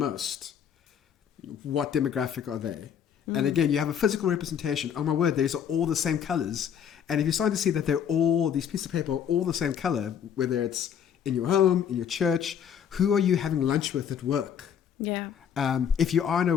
what demographic are they? And again, you have a physical representation. Oh my word, these are all the same colors. And if you're starting to see that these pieces of paper are all the same color, whether it's in your home, in your church? Who are you having lunch with at work? Yeah. If you are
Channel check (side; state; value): right; quieter; 8.4 dB